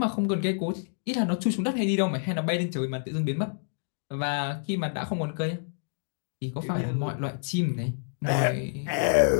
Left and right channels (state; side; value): silent; right; digital silence